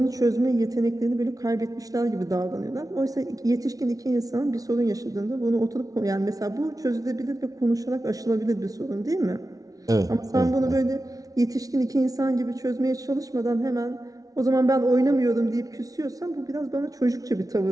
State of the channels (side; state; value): left; late; 0.18 ms